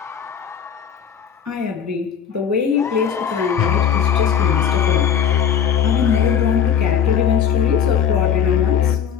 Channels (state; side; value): quieter; right; 8.0 dB